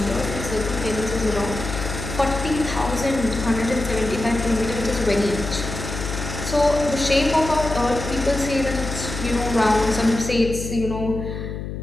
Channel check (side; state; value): left; noise; hum, 6 dB below the sound